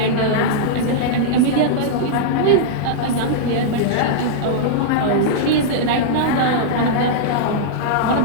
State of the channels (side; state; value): both; different; correlation -0.02